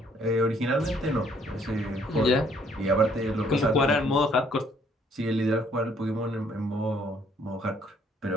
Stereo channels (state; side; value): normal; both; correlation 0.64